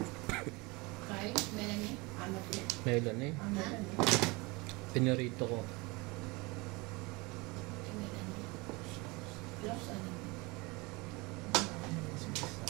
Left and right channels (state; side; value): quieter; left; 25.4 dB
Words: Kay, meron niya. Meron eh. Pinarito ko. Meron niya. Gloves ano?